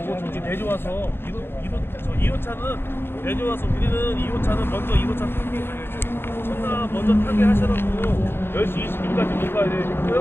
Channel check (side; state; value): right; late; 0.11 ms